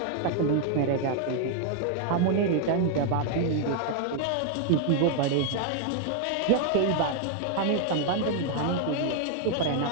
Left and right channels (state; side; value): different; both; correlation 0.00